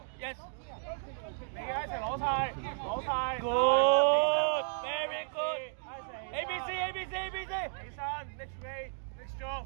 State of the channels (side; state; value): left; silent; digital silence